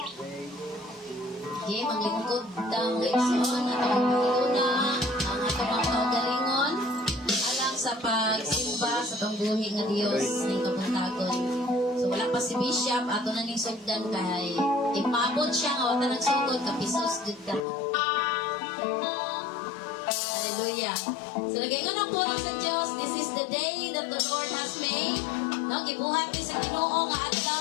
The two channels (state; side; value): drops out; right; at 17.7 s